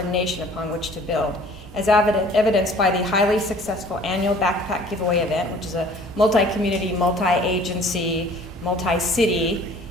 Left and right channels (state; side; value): normal; both; correlation 0.51